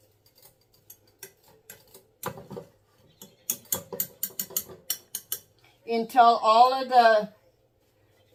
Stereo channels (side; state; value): both; identical; correlation 1.00